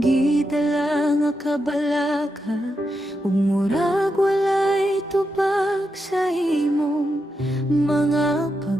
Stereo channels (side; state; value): both; normal; correlation 0.86